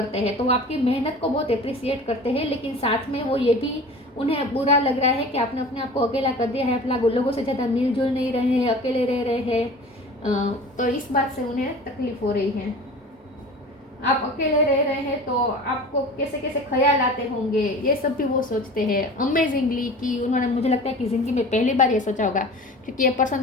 हैं। तो वो आपकी मेहनत को बहुत अप्रिसिएट करते हैं, लेकिन साथ में वो ये भी उन्हें बुरा लग रहा है कि आपने अपने आप को अकेला कर दिया है, अपना लोगों से ज़्यादा मिलजुल नहीं रहे हैं, अकेले रह रहे हैं। तो इस बात से उन्हें तकलीफ हो रही है। आप अकेले रह रहे हैं तो आपको कैसे कैसे ख्याल आते होंगे, ये सब भी वो सोचते हैं। अमेजिंगली कि उन्होंने, मुझे लगता है कि ज़िंदगी में पहली बार ये सोचा होगा, क्योंकि ये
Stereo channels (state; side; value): normal; both; correlation 0.39